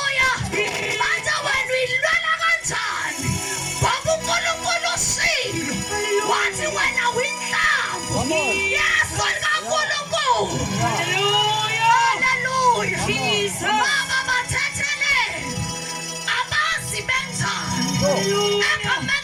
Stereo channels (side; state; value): both; identical; correlation 1.00